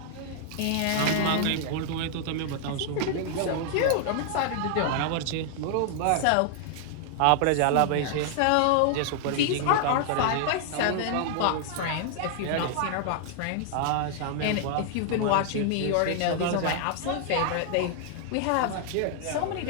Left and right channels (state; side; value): different; both; correlation 0.00